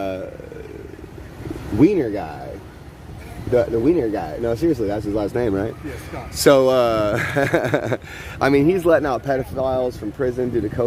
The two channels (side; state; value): both; identical; correlation 1.00